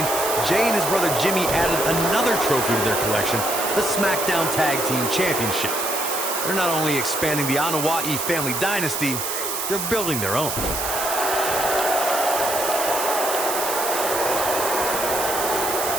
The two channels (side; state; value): right; noise; hiss, 3 dB below the sound